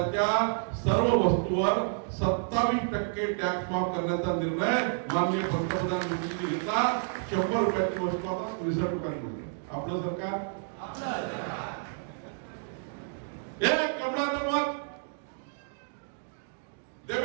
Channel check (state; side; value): silent; left; digital silence